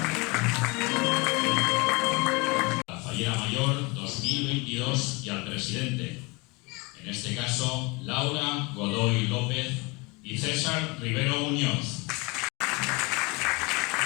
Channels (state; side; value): quieter; right; 26.9 dB